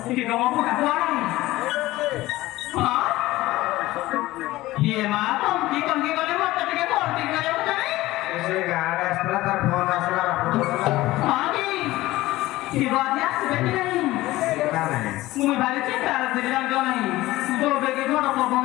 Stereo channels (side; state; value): right; quieter; 17.6 dB